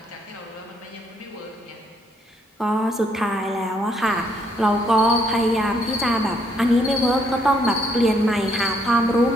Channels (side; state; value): both; normal; correlation 0.70